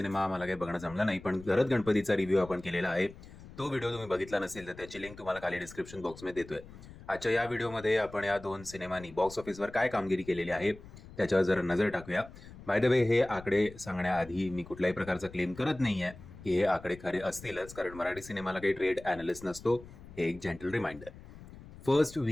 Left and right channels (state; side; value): noise; left; rumble, 17 dB below the sound